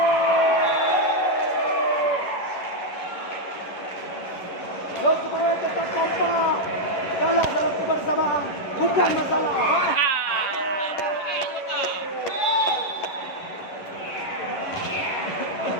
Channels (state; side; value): late; right; 11 ms